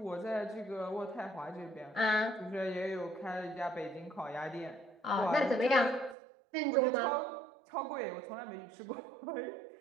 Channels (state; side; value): drops out; left; at 6.2 s